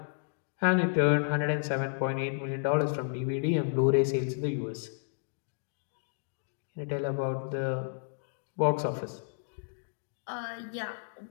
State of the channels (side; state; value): right; silent; digital silence